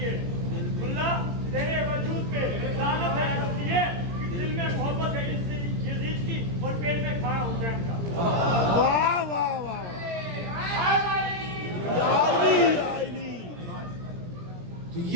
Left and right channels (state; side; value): late; left; 17 ms